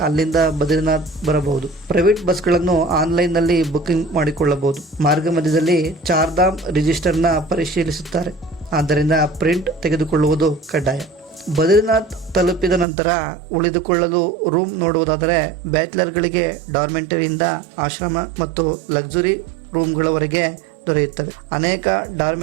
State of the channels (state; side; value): drops out; left; at 12.9 s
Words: ಅಲ್ಲಿಂದ ಬದ್ರಿನಾಥ್ ಬರಬಹುದು. ಪ್ರೈವೇಟ್ ಬಸ್ಗಳನ್ನು ಆನ್ಲೈನ್ನಲ್ಲಿ ಬುಕಿಂಗ್ ಮಾಡಿಕೊಳ್ಳಬಹುದು. ಮಾರ್ಗ ಮಧ್ಯದಲ್ಲಿ ಚಾರ್ಧಾಮ್ ರಿಜಿಸ್ಟರ್ನ ಪರಿಶೀಲಿಸುತ್ತಾರೆ, ಆದ್ದರಿಂದ ಪ್ರಿಂಟ್ ತೆಗೆದುಕೊಳ್ಳುವುದು ಕಡ್ಡಾಯ. ಬದ್ರಿನಾಥ್ ತಲುಪಿದ ನಂತರ ಉಳಿದುಕೊಳ್ಳಲು ರೂಮ್ ನೋಡುವುದಾದರೆ ಬ್ಯಾಚುಲರ್ಗಳಿಗೆ ಡಾರ್ಮೆಂಟರಿಯಿಂದ ಆಶ್ರಮ ಮತ್ತು ಲಕ್ಸುರಿ ರೂಮ್ಗಳವರೆಗೆ ದೊರೆಯುತ್ತವೆ. ಅನೇಕ